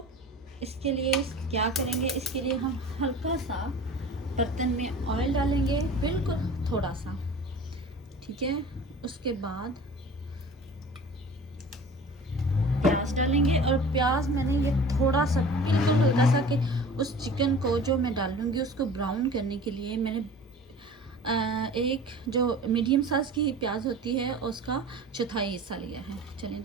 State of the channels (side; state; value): both; normal; correlation 0.41